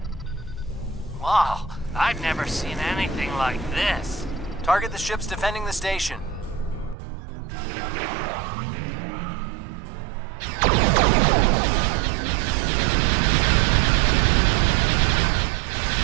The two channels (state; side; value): drops out; left; at 7.0 s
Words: Wow, I've never seen anything like this. Target the ships defending the station.